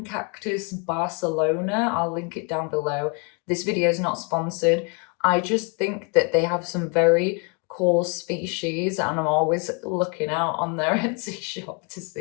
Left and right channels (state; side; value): quieter; right; 33.9 dB